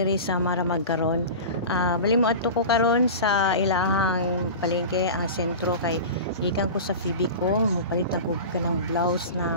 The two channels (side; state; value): both; inverted; correlation -0.31